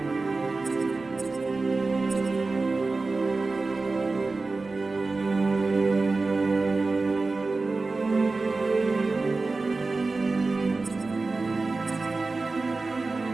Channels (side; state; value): left; quieter; 3.7 dB